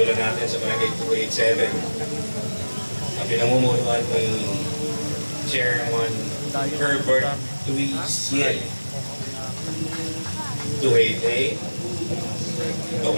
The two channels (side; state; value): both; inverted; correlation -1.00